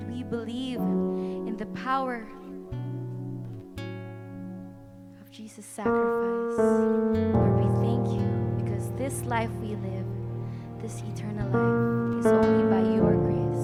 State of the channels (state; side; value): identical; both; correlation 1.00